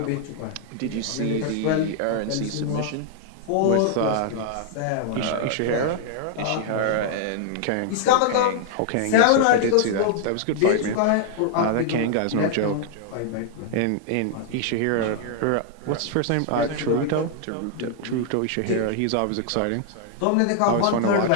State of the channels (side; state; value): both; different; correlation -0.01